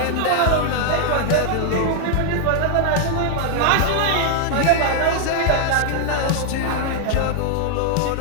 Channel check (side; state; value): both; different; correlation 0.00